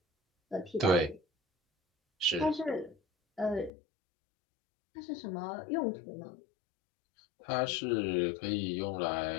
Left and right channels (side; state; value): right; drops out; at 3.7 s